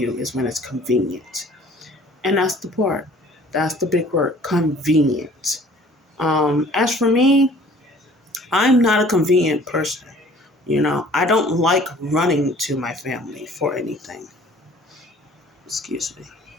is when it's convenient. And that's the part. That's the big word, convenient. As for me, I'm not a convenient person. I don't like running to my family for anything. Excuse me.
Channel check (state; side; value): normal; both; correlation 0.52